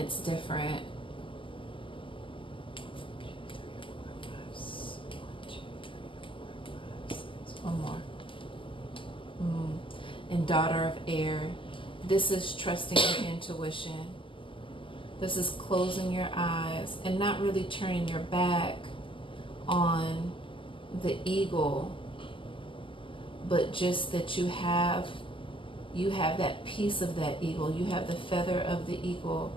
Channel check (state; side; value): late; right; 0.25 ms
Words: different. One more. And Daughter of Air. This is trusting your intuition. This is closing your eyes and not really turning your back on the eagle, but just that you have that piece of that eagle. You have the feather of the eagle,